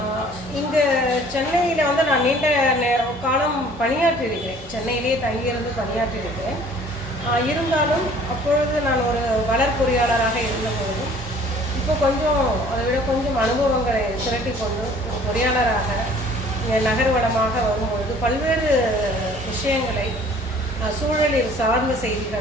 இங்கே சென்னையில் நான் நீண்ட காலம் பணியாற்றி இருக்கிறேன். சென்னையிலேயே தங்கியிருந்து பணியாற்றி இருக்கிறேன். இருந்தாலும் அப்பொழுது நான் ஒரு வளர் பொறியாளராக இருந்தபொழுதும் இப்போ கொஞ்சம் அதை விட கொஞ்சம் அனுபவங்களை திரட்டி கொண்டு ஒரு பொறியாளராக நகர்வளமாக வரும்பொழுது பல்வேறு விஷயங்களை, சூழலில் சார்ந்த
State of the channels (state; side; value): normal; both; correlation 0.53